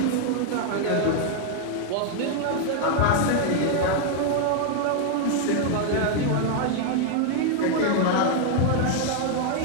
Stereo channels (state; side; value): different; both; correlation 0.00